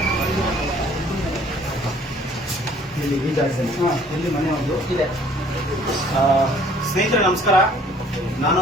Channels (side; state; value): both; normal; correlation 0.56